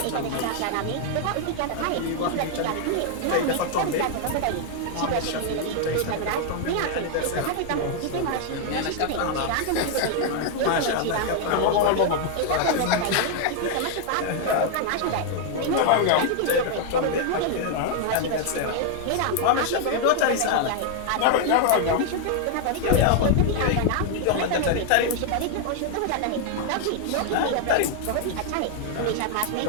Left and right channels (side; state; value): both; different; correlation 0.00